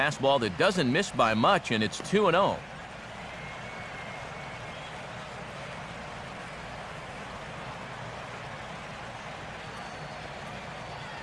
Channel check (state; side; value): identical; both; correlation 1.00